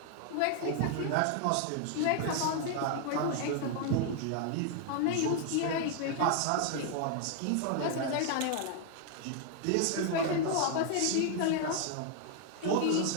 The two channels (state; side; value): different; both; correlation 0.00